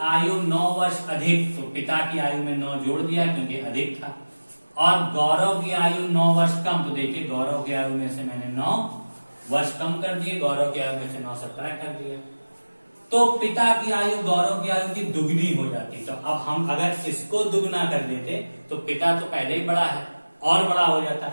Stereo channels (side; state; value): both; inverted; correlation -1.00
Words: आयु 9 वर्ष अधिक, तो पिता की आयु में 9 जोड़ दिया क्योंकि अधिक था, और गौरव की आयु 9 वर्ष कम, तो देखिए गौरव की आयु में से मैंने 9 वर्ष कम कर दिए, गौरव की आयु में से 9 सब्ट्रैक्ट कर दिया, तो पिता की आयु गौरव की आयु की दुगनी हो जाती। तो अब हम अगर इसको दुगना कर देते तो पिता तो पहले ही बड़ा है और बड़ा हो